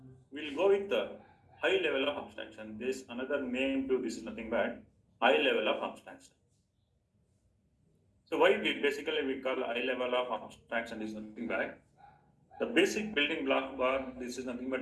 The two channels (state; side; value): identical; both; correlation 1.00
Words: we'll go with the high level of abstraction. This another name to this is nothing but high level of abstraction. So why we call high level of abstraction is nothing but the basic building block bar. This is nothing